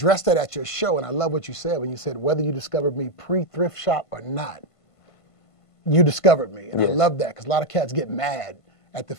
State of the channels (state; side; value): late; right; 1.5 ms